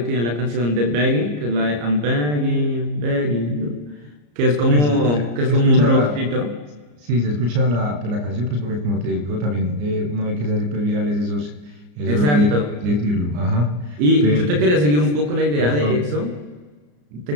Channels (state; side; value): late; left; 34 ms